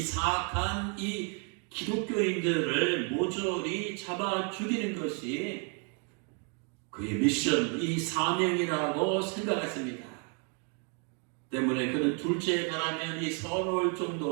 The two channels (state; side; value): quieter; left; 38.2 dB